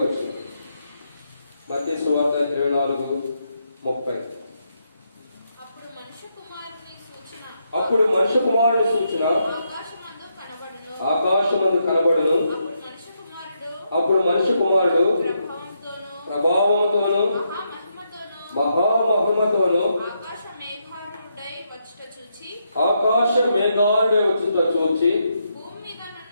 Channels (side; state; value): both; inverted; correlation -0.79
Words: వచ్చింది. మత్తయి సువార్త 24:30. అప్పుడు మనుష్య కుమారుని సూచన ఆకాశమందు కనబడును. అప్పుడు మనుష్య కుమారుడు ప్రభావముతోను మహామహిమతోను ఆకాశ మేఘాలుడై వచ్చుట చూచి